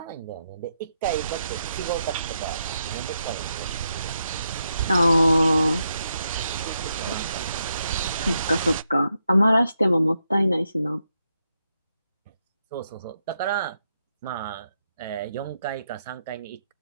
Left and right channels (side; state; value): both; inverted; correlation -0.82